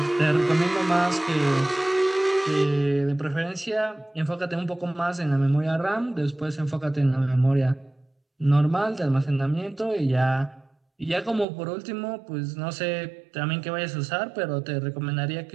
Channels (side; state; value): left; drops out; at 11.5 s